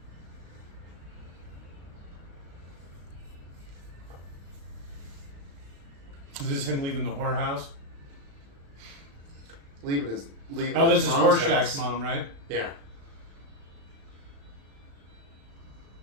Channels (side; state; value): left; late; 35 ms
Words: Is this him leaving the whorehouse? Leaving Oh, this his is mom's Horseshack's house. mom, right? Yeah.